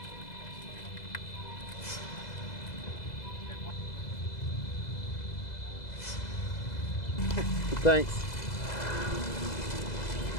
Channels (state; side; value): late; right; 2.0 ms